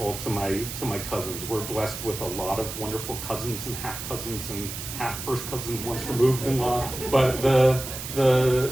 to my cousins. We're blessed with a lot of wonderful cousins and half cousins and half first cousins once removed in law. But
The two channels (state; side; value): noise; right; hiss, 8 dB below the sound